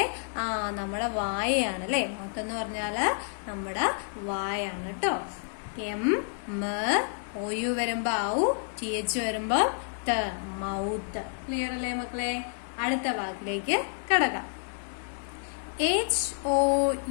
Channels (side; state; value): right; silent; digital silence